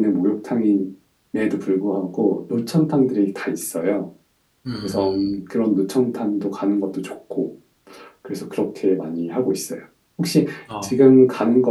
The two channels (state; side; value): identical; both; correlation 1.00